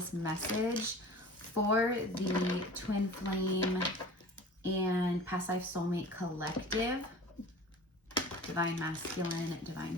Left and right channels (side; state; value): both; normal; correlation 0.40